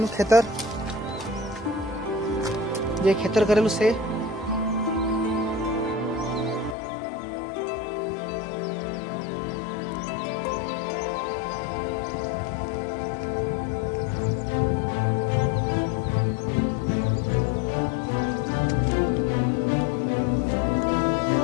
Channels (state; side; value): drops out; right; at 6.8 s